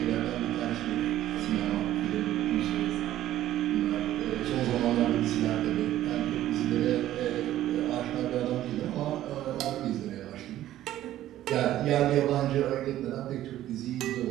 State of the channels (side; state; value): left; quieter; 13.4 dB